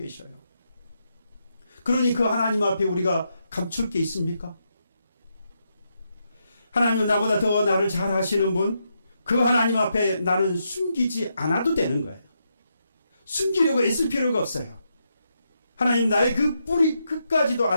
그러니 그 하나님 앞에 우리가 감출 게 있습니까? 하나님은 나보다 더 나를 잘 아시는 분, 그 하나님 앞에 나는 숨기지 않아도 되는 거예요. 숨기려고 애쓸 필요가 없어요. 하나님 나의 그 뿌리 끝까지도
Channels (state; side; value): inverted; both; correlation -0.81